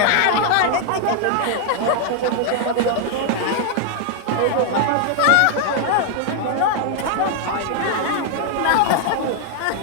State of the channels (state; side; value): different; both; correlation 0.00